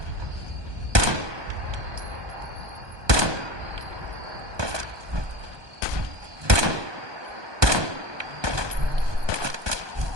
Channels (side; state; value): left; late; 1.2 ms